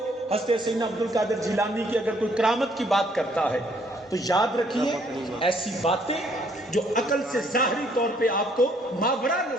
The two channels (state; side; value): normal; both; correlation 0.65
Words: حضرت سیدنا عبد القادر جیلانی کی اگر کوئی کرامت کی بات کرتا ہے تو یاد رکھیے ایسی باتیں جو عقل سے ظاہری طور پہ آپ کو ماورا